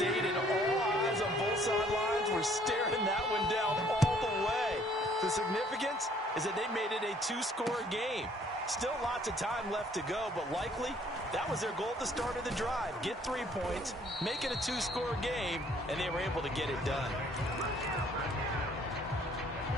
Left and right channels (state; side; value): normal; both; correlation 0.61